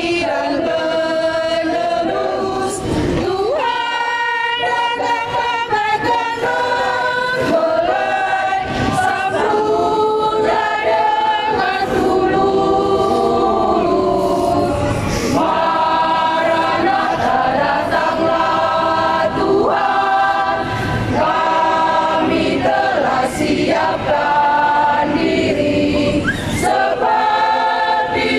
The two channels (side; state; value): both; identical; correlation 1.00